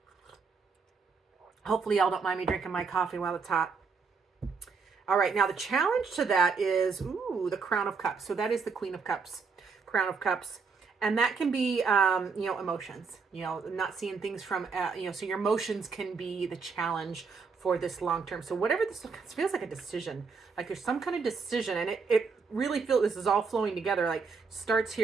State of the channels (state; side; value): quieter; left; 5.0 dB